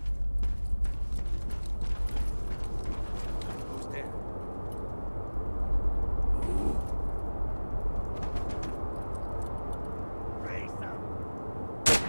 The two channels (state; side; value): inverted; both; correlation -1.00